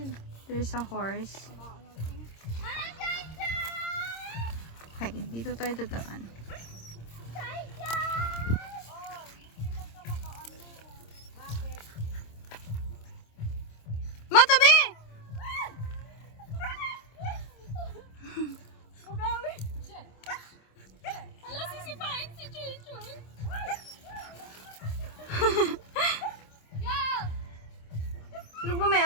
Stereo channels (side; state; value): right; late; 26 ms